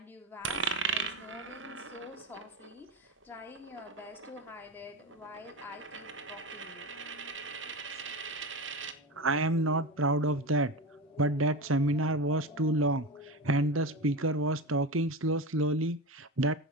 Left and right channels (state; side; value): normal; both; correlation 0.23